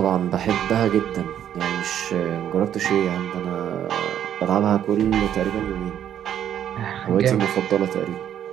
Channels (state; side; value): quieter; left; 10.1 dB